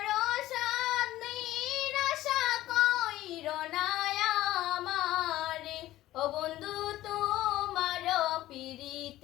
সাদ, নিরাশা কইর না আমারে। ও বন্ধু তোমার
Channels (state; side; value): quieter; right; 15.3 dB